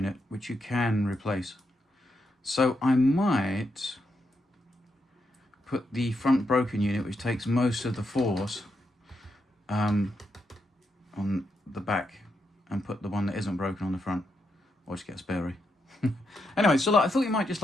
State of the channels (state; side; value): normal; both; correlation 0.82